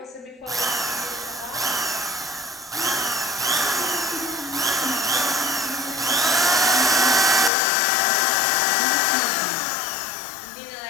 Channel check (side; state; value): right; drops out; at 7.5 s